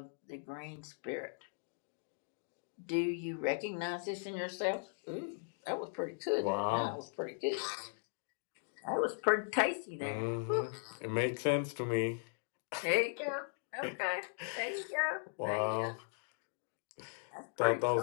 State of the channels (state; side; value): silent; right; digital silence